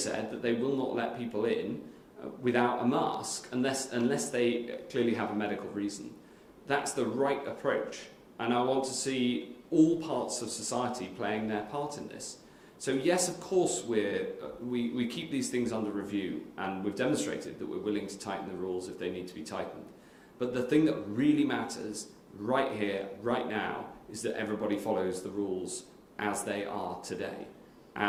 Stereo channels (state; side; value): identical; both; correlation 1.00